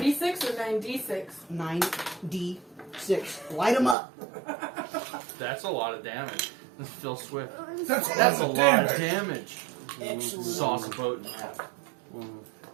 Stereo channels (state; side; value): drops out; left; at 4.0 s